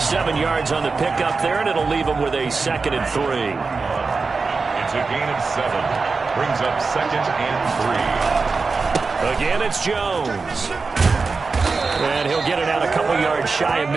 yards on the pickup there, and it'll leave him with a 2nd and 3. It's a gain of 7. Brings up 2nd and 3. Again, it's Jones. And he'll get it out a couple yards shy of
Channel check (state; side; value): quieter; left; 4.4 dB